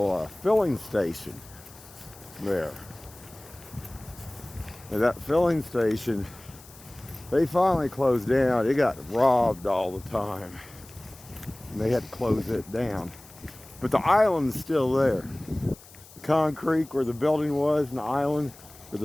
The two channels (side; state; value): left; noise; hiss, 21 dB below the sound